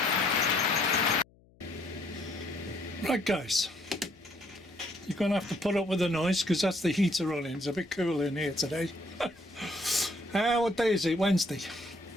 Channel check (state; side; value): noise; left; hum, 29 dB below the sound